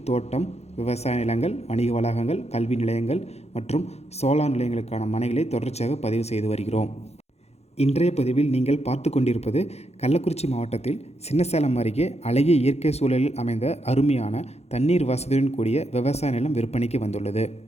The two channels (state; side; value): late; right; 0.31 ms